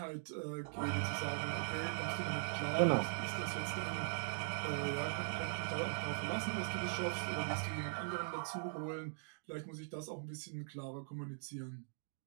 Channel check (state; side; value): silent; left; digital silence